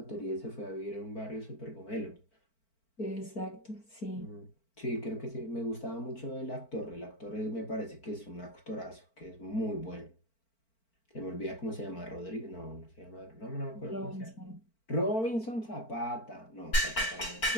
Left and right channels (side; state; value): right; late; 4.4 ms